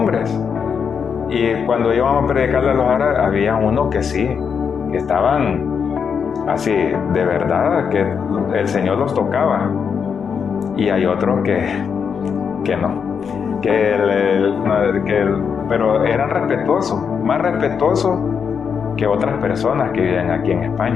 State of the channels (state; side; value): quieter; right; 6.6 dB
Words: Y cuando íbamos a predicarle a los árabes, había unos que sí, que estaban así, de verdad, que el Señor los tocaba. Y hay otros que no. Pero eran respetuosos, más respetuosos que otras personas que viven aquí en